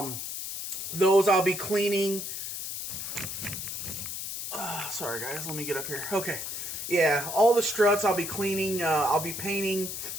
Those I'll be cleaning. Sorry, guys. Let me get up here. Okay. Yeah, all the struts I'll be cleaning. I'll be painting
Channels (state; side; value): noise; left; hiss, 6 dB below the sound